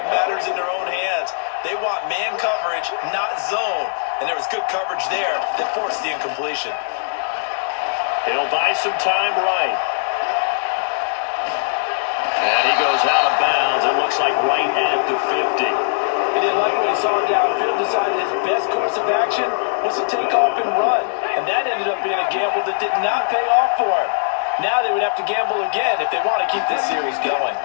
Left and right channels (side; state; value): right; silent; 63 dB below the other